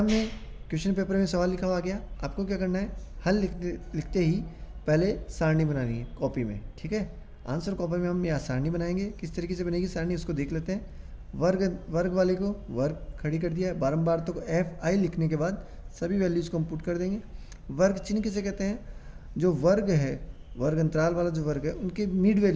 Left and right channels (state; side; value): identical; both; correlation 1.00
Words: में क्वेश्चन पेपर में सवाल लिखा हुआ गया, आपको क्या करना है, हल लिखते ही पहले सारणी बनानी है कॉपी में। ठीक है, आंसर कॉपी में हम यहाँ सारणी बनाएंगे। किस तरीके से बनेगी सारणी उसको देख लेते हैं। वर्ग वाले को वर्ग खड़ी कर दिया है, बारंबार तो FI लिखने के बाद सभी वैल्यूज़ को हम पुट कर देंगे। वर्ग चिन्ह किसे कहते हैं, जो वर्ग है, वर्ग अंतराल वाला जो वर्ग है उनके मिड